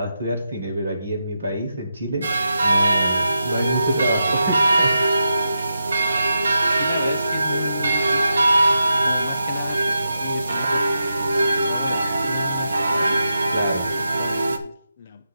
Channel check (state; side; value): inverted; both; correlation -0.87